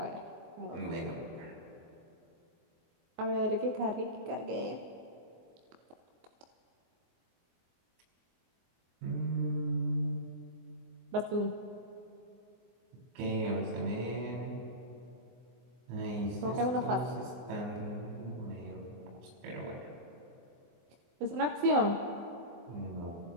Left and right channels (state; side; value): late; left; 24 ms